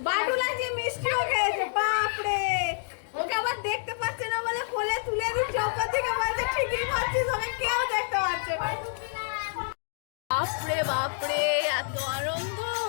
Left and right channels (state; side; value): silent; right; digital silence